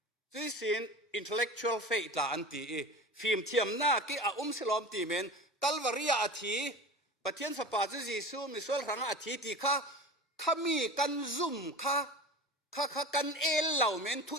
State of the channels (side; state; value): both; normal; correlation 0.33